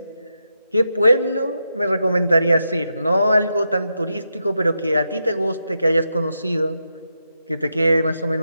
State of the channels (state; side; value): inverted; both; correlation -0.85